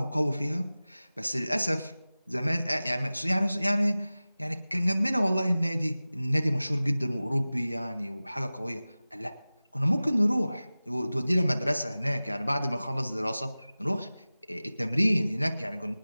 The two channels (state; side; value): inverted; both; correlation -0.97